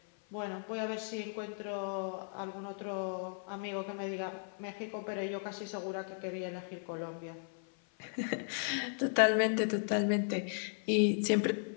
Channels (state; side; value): silent; right; 54 dB below the other